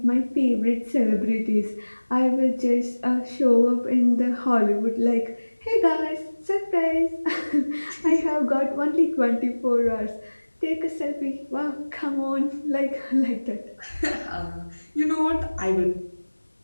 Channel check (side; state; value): both; inverted; correlation -1.00